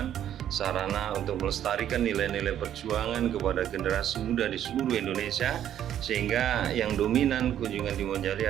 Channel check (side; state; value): left; quieter; 10.7 dB